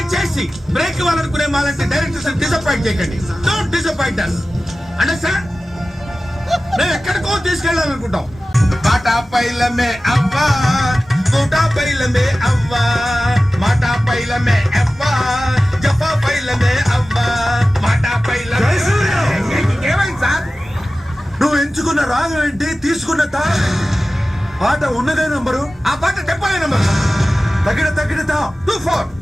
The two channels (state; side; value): normal; both; correlation 0.96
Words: బ్రేక్ ఇవ్వాలనుకునే మాలాంటి డైరెక్టర్స్ డిసప్పాయింట్ చేయకండి. Don't disappoint us. అండర్స్టాండ్? మేము ఎక్కడికో తీసుకెళ్ళాలనుకుంటాం. బాటా పైలమే అవ్వా, కోటా పైలమే అవ్వా, మాటా పైలమే అవ్వా, జఫా పైలమే అవ్వా, మాటా పైలమే. ఏమైంది సార్? నువ్వు ఎంచుకున్న రాగం ఏంటి, తీసుకున్న పాట ఉన్నదే నంబరు, ఆ పాట చెప్పలే నంబర్. తగిన 24